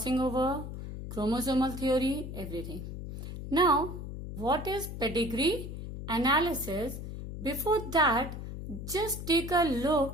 over, chromosomal theory, everything. Now, what is pedigree analysis? Before that, just take a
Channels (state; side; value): noise; left; hum, 8 dB below the sound